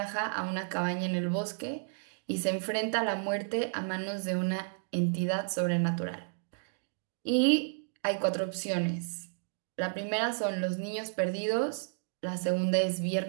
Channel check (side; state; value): left; silent; digital silence